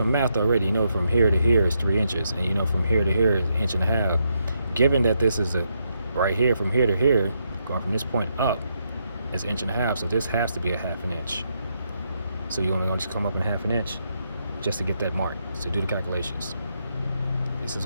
math already, you know from here to here is 3 inches, and you know from here to here is 1.5 inches. Given that this is right here, from here to here, going from this point up, is 1.5 inches, so this has to be 1/2 inch. So you're only going to come up in 1/2 inch just to get that mark. So do the calculations. This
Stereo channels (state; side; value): inverted; both; correlation -0.79